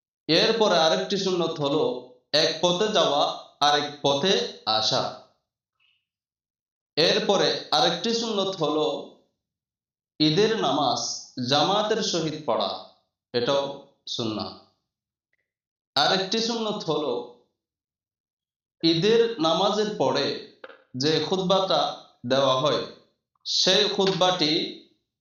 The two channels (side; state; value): both; identical; correlation 1.00